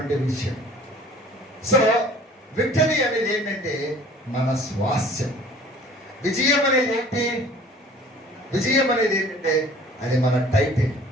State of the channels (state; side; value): normal; both; correlation 0.49